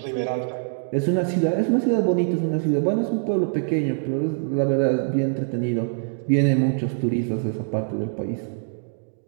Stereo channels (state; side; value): silent; left; digital silence